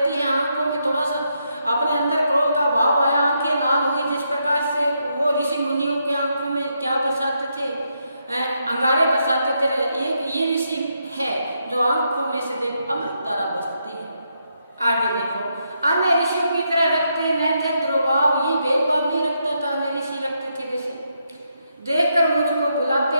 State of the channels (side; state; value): both; inverted; correlation -0.80